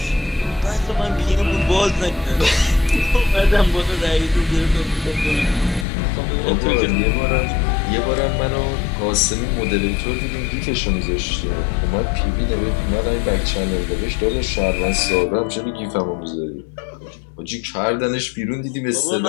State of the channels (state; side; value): drops out; right; at 5.9 s